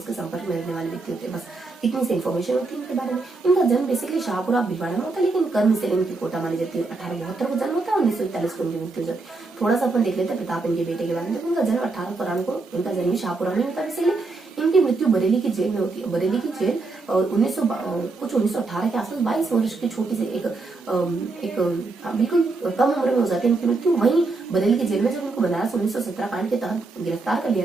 के संपर्क में रहने वाले व्यक्ति होते हैं। बस इतनी सी इन्फॉर्मेशन होती है इनके बारे में। इनका जन्म बेसिकली शाहपुरा भिलवाड़ा में होता है, लेकिन कर्म से इनकी कोटा मानी जाती है। 1872 को जन्म होता है, 1941 को इनकी मृत्यु हो जाती है। थोड़ा सा अपन देख लेते हैं प्रताप इनके बेटे के बारे में। देखो इनका जन्म 1893 को, इनका जन्म शाहपुरा में होता है। बेसिकली इनकी मृत्यु बरेली की जेल में होती है। बरेली की जेल 1918 के आसपास 22 वर्ष की छोटी सी एक बिल्कुल कम उम्र में हो जाती है इनकी मृत्यु। वहीं बरेली की जेल में जब इनको बनारस 1917 कांड के तहत गिरफ्तार कर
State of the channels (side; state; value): left; quieter; 3.6 dB